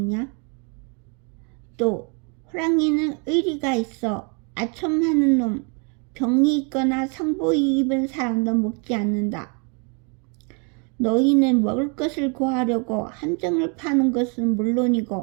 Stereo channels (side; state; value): left; quieter; 36.0 dB